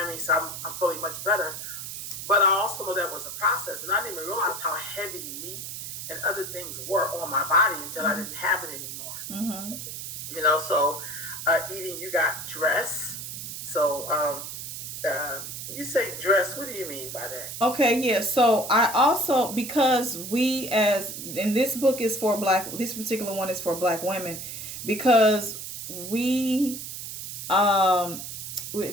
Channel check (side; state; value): right; noise; hiss, 8 dB below the sound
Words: I mean? So I'm feeling much better. But I also know that was a process, and I didn't even realize how heavy meat and other things were on my body until I Mm-hmm. didn't have it anymore. Mm-hmm. So eating, you got dress. So you say dress, what do you mean by that? Okay, yeah. So I also, because we, as in this book is for this particular one is for black women, because we um